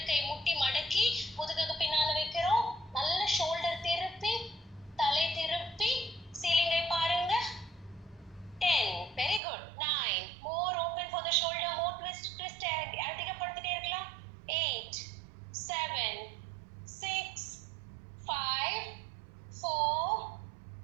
கை முட்டி மடக்கி முதுகுக்கு பின்னால வைக்கிறோம். நல்ல ஷோல்டர் திருப்பி தலை திருப்பி சீலிங்கை பாருங்க. 10 very good. 9 more open for the shoulder, more twist அதிகப்படுத்திட்டே இருக்கலாம். 8 7 6 5 4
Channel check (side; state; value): left; drops out; at 9.4 s